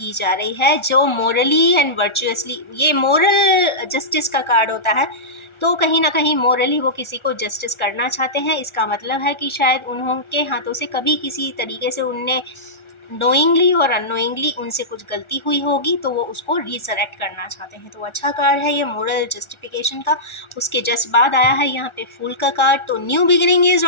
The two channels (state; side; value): late; right; 1.4 ms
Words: जा रही है, जो मोरली एंड वर्चुअसली, ये मोरल जस्टिस का कार्ड होता है, तो कहीं ना कहीं मोरली वो किसी को जस्टिस करना चाहते हैं। इसका मतलब है कि शायद उनके हाथों से कभी किसी तरीके से उनने नोइंगली और अननोइंगली उनसे कुछ गलती हुई होगी, तो वो उसको रिसरेक्ट करना चाहते हैं। तो अच्छा कार्ड है ये मोरल जस्टिफिकेशन का। उसके जस्ट बाद आया है यहाँ पे फूल का कार्ड, तो new beginning is